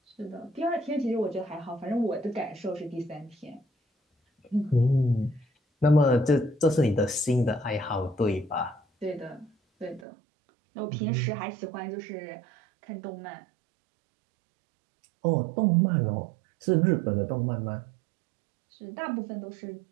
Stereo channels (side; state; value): left; drops out; at 10.1 s